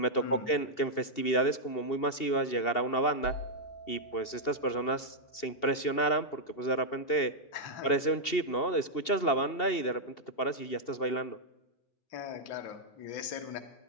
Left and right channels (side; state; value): right; late; 2.7 ms